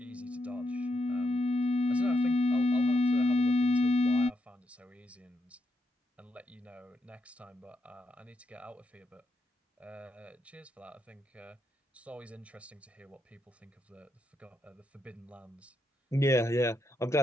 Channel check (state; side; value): normal; both; correlation 0.81